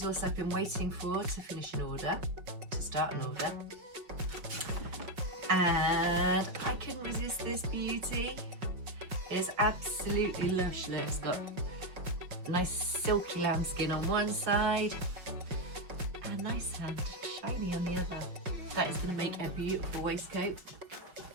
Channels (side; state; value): left; late; 5.5 ms